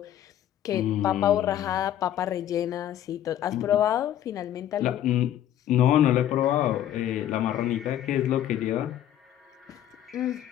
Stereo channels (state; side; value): quieter; right; 11.6 dB